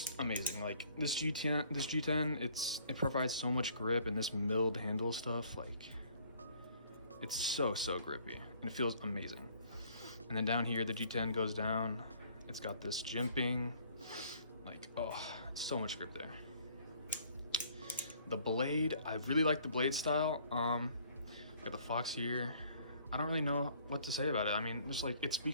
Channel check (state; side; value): inverted; both; correlation -0.59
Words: amazing. Like this G10, it provides so much grip, and this milled handle stuff, like it's so grippy, and it feels amazing. And then down here, the G10 goes down. It's got this jimping, like, oh, so much grip there. The blade, I really like the blade style. Got the Fox here. I don't really know what to say about it. I mean, just like, it